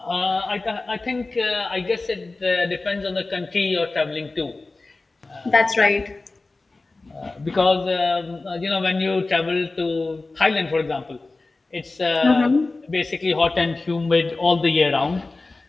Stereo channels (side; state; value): right; quieter; 3.4 dB